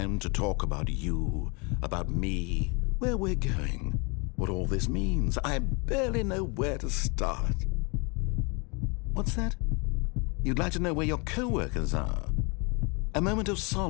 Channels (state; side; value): quieter; right; 30.9 dB